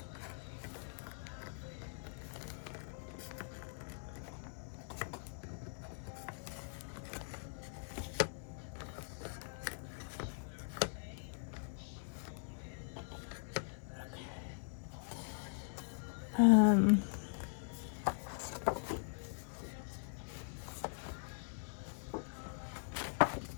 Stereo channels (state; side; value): silent; right; digital silence